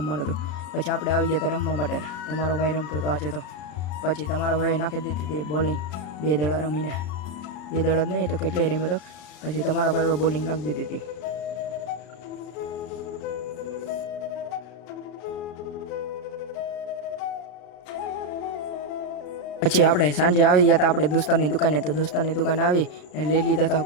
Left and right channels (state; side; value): late; right; 33 ms